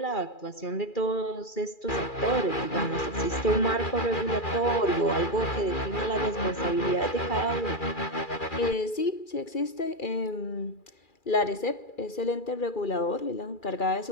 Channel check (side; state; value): right; late; 2.4 ms